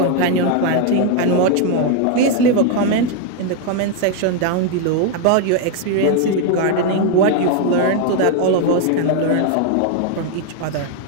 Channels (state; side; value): different; both; correlation 0.01